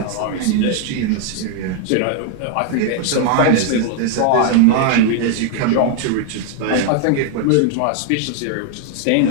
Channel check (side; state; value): both; different; correlation 0.00